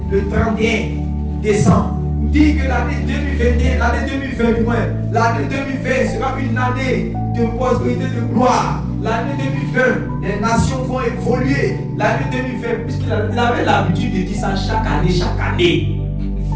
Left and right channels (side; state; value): both; identical; correlation 1.00